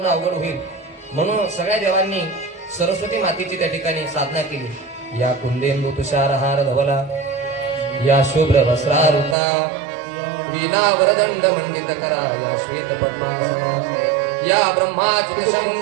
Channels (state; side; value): drops out; left; at 9.3 s